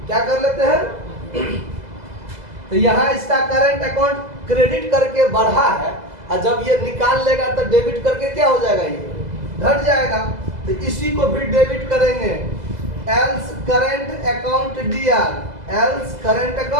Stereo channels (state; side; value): late; left; 2.0 ms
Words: क्या कर लेते हैं? तो यहाँ इसका करंट अकाउंट क्रेडिट करके बढ़ा है, और जब ये निकाल लेगा तो डेबिट करके क्या हो जाएगा? ये घट जाएगा। तो इसी को भी डेबिट करेंगे। Else current account DR, else current